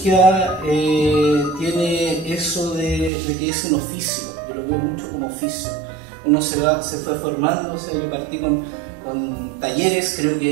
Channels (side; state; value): left; drops out; at 3.1 s